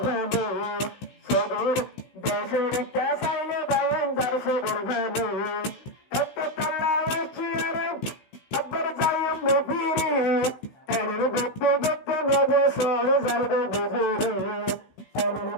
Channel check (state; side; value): late; right; 16 ms